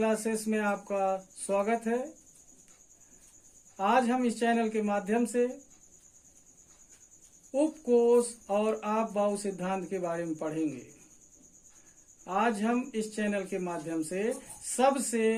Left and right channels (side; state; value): both; identical; correlation 1.00